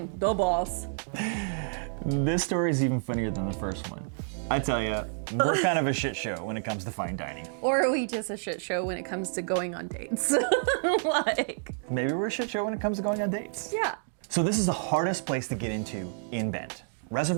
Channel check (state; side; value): silent; left; digital silence